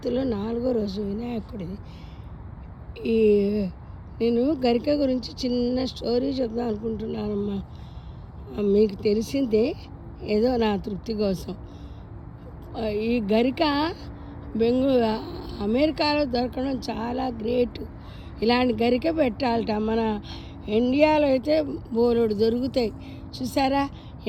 4వ రోజు వినాయకుడిది. ఈ నేను గరిక గురించి చిన్న స్టోరీ చెప్దాం అనుకుంటున్నానమ్మా. మీకు తెలిసిందే, ఏదో నా తృప్తి కోసం. ఈ గరిక అమెరికాలో దొరకడం చాలా గ్రేట్. ఇలాంటి గరిక పెట్టాలట. మన ఇండియాలో అయితే బోలెడు దొరుకుతాయి. చూసారా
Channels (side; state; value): both; identical; correlation 1.00